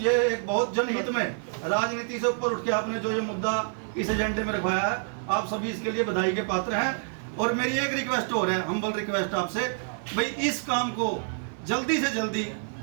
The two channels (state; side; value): silent; left; 60 dB below the other